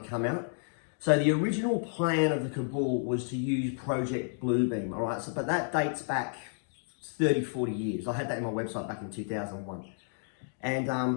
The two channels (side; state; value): right; silent; digital silence